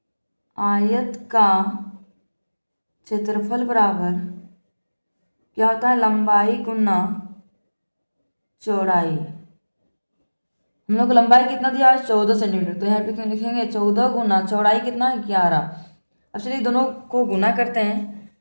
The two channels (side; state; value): both; inverted; correlation -1.00